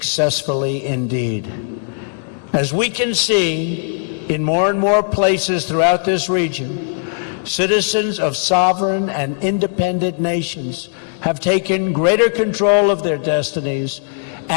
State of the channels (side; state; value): right; silent; 67 dB below the other